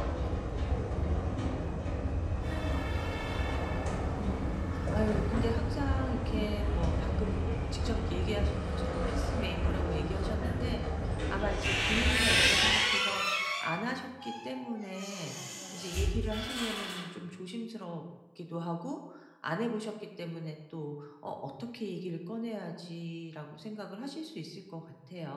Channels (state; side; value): identical; both; correlation 1.00